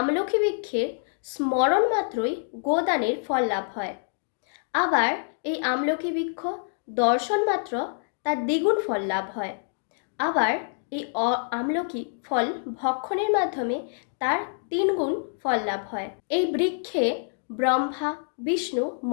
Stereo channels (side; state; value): right; silent; digital silence